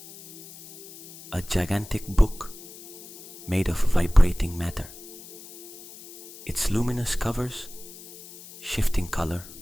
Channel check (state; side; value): noise; left; hiss, 17 dB below the sound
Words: A gigantic book made of vibrating matter. Its luminous covers shifting color